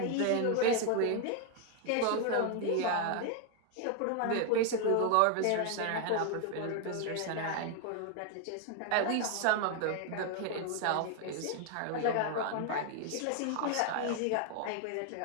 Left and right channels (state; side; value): different; both; correlation 0.00